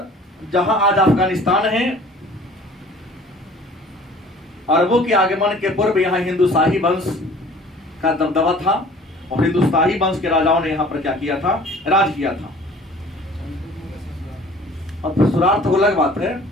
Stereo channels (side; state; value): both; normal; correlation 0.49